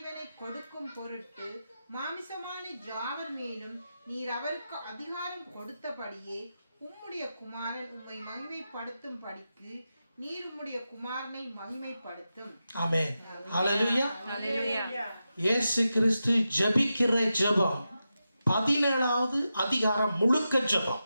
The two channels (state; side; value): inverted; both; correlation -0.90